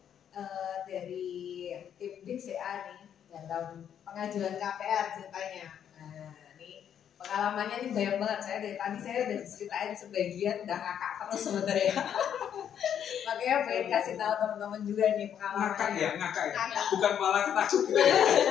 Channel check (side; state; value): right; quieter; 9.1 dB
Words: dari tim BCA nih dalam pengajuan KPR ceritanya. Nah, ini pengalamannya ini banyak banget. Saya dari tadi saya udah ceritain sebagian, udah ngakak terus sebenarnya. Makanya pengen kasih tahu teman-teman juga nih pengalamannya. Ngakak ya. Bukan malah ketakut gitu ya.